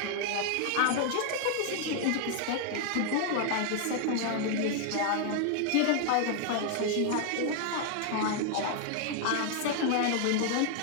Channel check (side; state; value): both; different; correlation 0.00